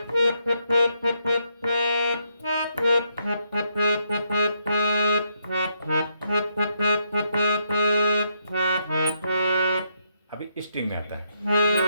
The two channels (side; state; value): both; inverted; correlation -0.78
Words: अभी स्ट्रिंग में आता है।